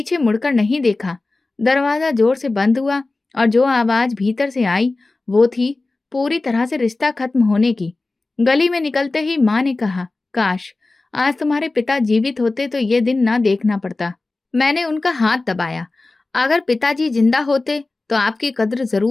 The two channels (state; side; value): quieter; right; 3.3 dB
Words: मुड़कर नहीं देखा। दरवाजा जोर से बंद हुआ और जो आवाज भीतर से आई वो थी पूरी तरह से रिश्ता खत्म होने की। गली में निकलते ही माँ ने कहा, काश आज तुम्हारे पिता जीवित होते तो ये दिन ना देखना पड़ता। मैंने उनका हाथ दबाया। अगर पिताजी जिंदा होते तो आपकी कद्र